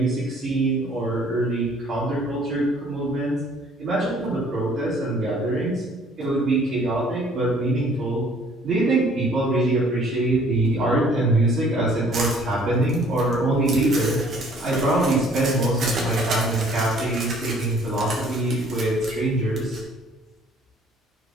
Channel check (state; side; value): normal; both; correlation 0.57